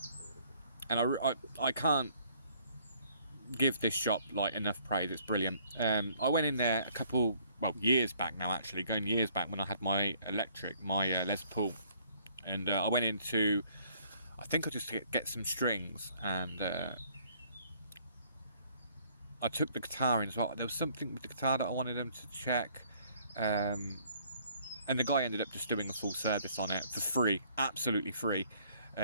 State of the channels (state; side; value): inverted; both; correlation -0.61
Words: I can't give this shop like enough praise. It's brilliant. I went in there years back now, actually, going years back when I had my electric, my Les Paul. And I went into, I think I just get some strings, and I took the guitar in as well. There was something with the guitar that I wanted them to check, and the guy ended up just doing a full service on it for free, absolutely free,